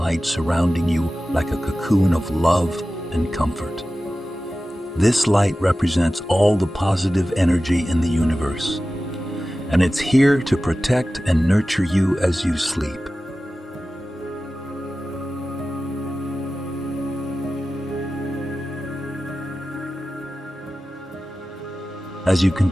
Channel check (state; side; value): normal; both; correlation 0.95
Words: surrounding you like a cocoon of love and comfort. This light represents all the positive energy in the universe, and it's here to protect and nurture you as you sleep. As you